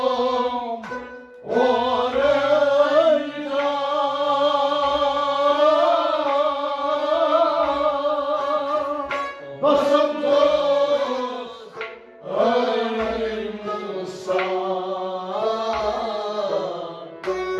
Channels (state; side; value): identical; both; correlation 1.00